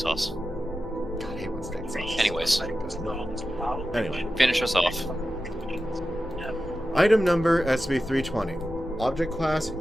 God, I hate when steak sauce. Anyways. Anyway. Finish us off. Item number SCP-320. Object class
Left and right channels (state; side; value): normal; both; correlation 0.92